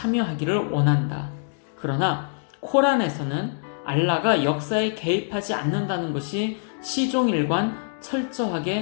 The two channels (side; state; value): right; silent; digital silence